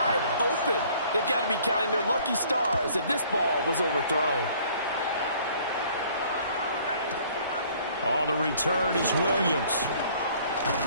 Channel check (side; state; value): both; inverted; correlation -0.57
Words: open. They've got to be counting their lucky stars if this ball was overthrown. On the return is Williams.